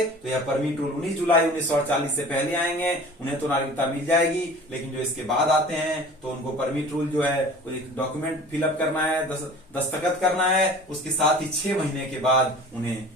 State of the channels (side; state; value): both; normal; correlation 0.43